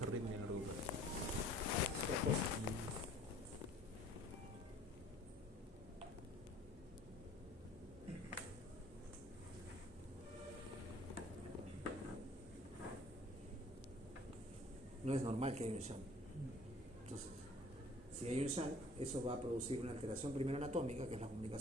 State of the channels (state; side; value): normal; both; correlation 0.52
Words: arritmia en el auricular? No es normal que haya un shunt. Entonces, si hay un shunt, eso va a producir una alteración primero anatómica, que es la